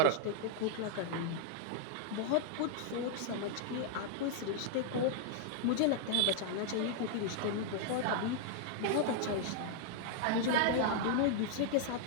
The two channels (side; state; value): both; different; correlation -0.01